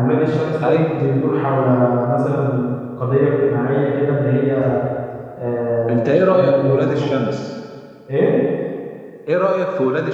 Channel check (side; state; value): both; identical; correlation 1.00